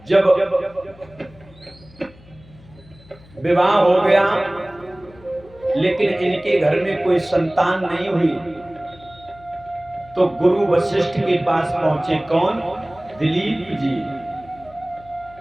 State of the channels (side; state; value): left; noise; hum, 24 dB below the sound